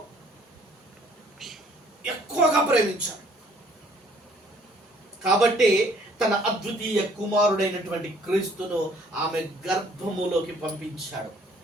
ఎక్కువగా ప్రేమించాడు. కాబట్టి తన అద్వితీయ కుమారుడైనటువంటి క్రీస్తును ఆమె గర్భములోకి పంపించాడు.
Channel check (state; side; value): normal; both; correlation 0.60